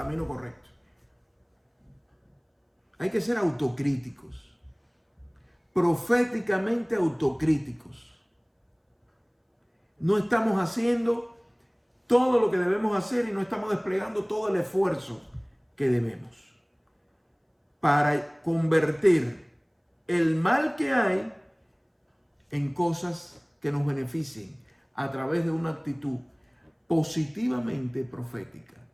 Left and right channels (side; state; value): both; identical; correlation 1.00